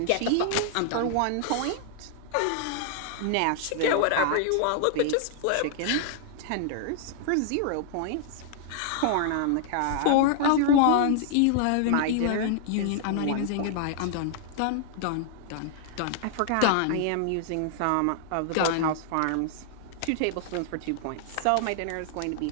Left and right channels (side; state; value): both; different; correlation -0.01